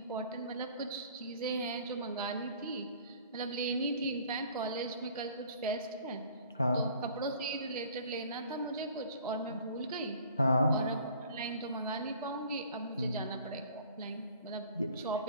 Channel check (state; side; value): inverted; both; correlation -0.51